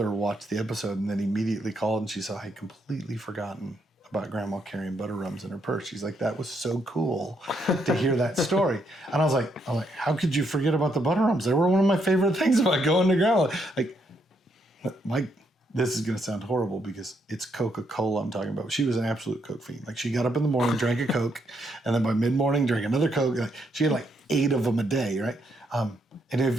watched the episode and then immediately called and she said, I had completely forgotten about grandma carrying butter rums in her purse. She's like, that was so cool to hear that story. And I was like, how could you forget about the butter rums? They were one of my favorite things about going to grandma. Like, this is going to sound horrible because it's Coca-Cola I'm talking about. She was an absolute Coke fiend. Like, she got up in the morning, drank a Coke, and then by mid-morning drank another Coke. Like, she had like 8 of them a day, right? And if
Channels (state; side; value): normal; both; correlation 0.75